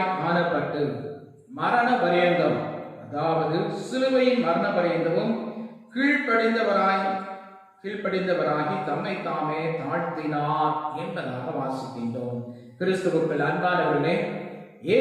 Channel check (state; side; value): identical; both; correlation 1.00